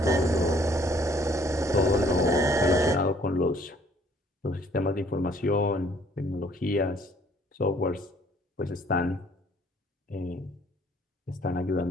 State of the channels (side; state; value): both; normal; correlation 0.61